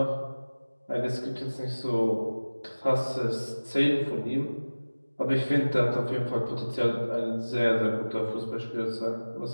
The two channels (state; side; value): inverted; both; correlation -1.00